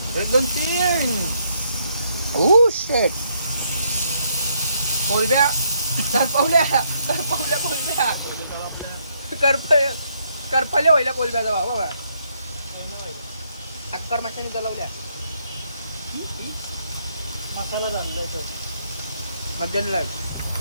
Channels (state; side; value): inverted; both; correlation -0.73